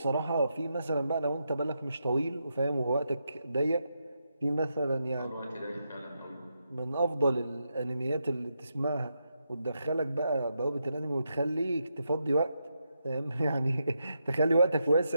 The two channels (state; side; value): inverted; both; correlation -0.84